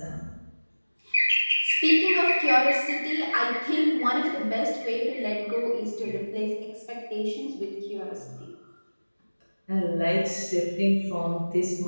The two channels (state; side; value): inverted; both; correlation -1.00